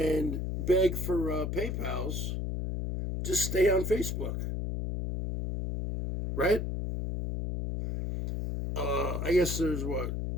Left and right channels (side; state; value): left; noise; hum, 2 dB below the sound